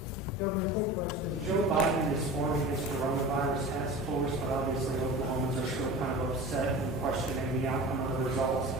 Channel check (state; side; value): normal; both; correlation 0.35